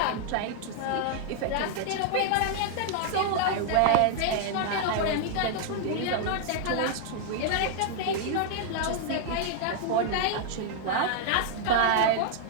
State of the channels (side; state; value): both; different; correlation 0.00